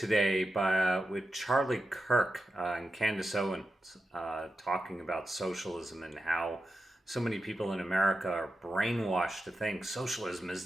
with Charlie Kirk and Candace Owens talking about socialism and how so many people in America are brainwashed to think socialism is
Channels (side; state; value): both; normal; correlation 0.90